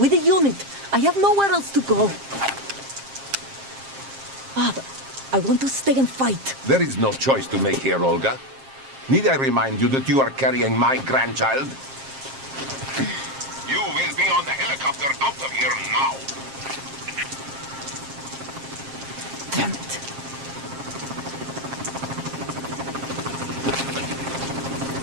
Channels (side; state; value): left; late; 7.5 ms